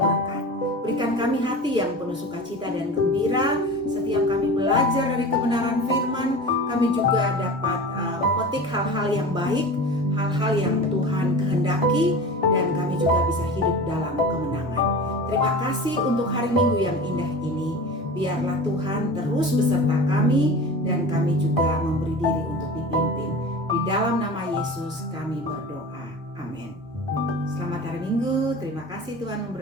Berikan kami hati yang penuh sukacita dan gembira setiap kami belajar dari kebenaran firman. Kami juga dapat memetik hal-hal yang baik, hal-hal yang Tuhan kehendaki, dan kami juga bisa hidup dalam kemenangan. Terima kasih untuk hari Minggu yang indah ini. Biarlah Tuhan terus beserta kami, dan kami juga memberi diri untuk dipimpin. Di dalam nama Yesus kami berdoa. Amin. Selamat hari Minggu. Terima kasih, Tuhan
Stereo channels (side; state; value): both; normal; correlation 0.34